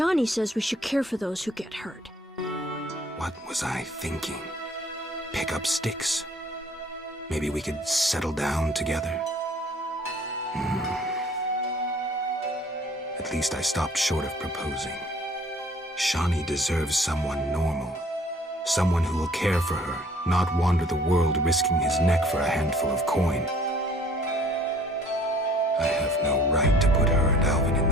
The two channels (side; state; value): both; normal; correlation 0.55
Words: says we should care for those who get hurt. What was I thinking? Pick up sticks. Maybe we could settle down together. At least I stopped short of proposing. Shawnee deserves someone normal. Someone who will care for her, not wander the world risking his neck for a handful of coin. I have no right to put her and Alvin in